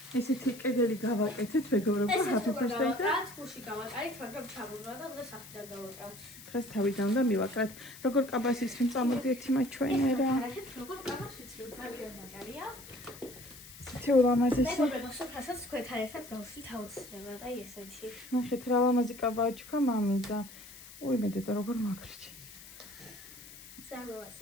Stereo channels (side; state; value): left; noise; hiss, 17 dB below the sound